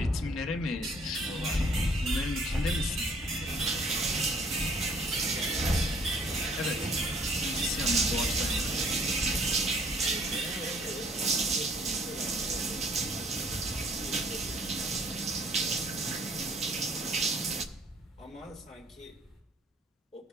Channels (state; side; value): normal; both; correlation 0.59